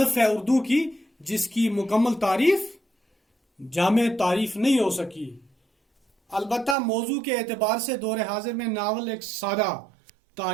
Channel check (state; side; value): drops out; left; at 6.8 s